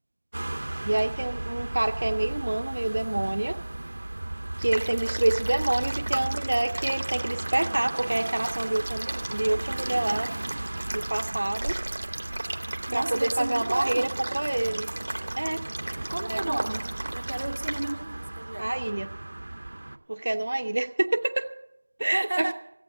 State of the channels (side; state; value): both; inverted; correlation -1.00